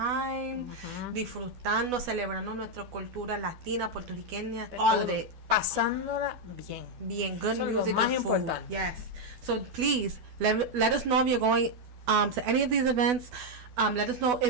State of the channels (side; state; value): left; late; 12 ms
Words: disfrutando, celebrando nuestra cultura latina, puertorriqueña, all of it. Pasándola bien. Bien, good Eso es lo music más and food. importante. Yes. So please let us know if you're going to any of these events. Let us know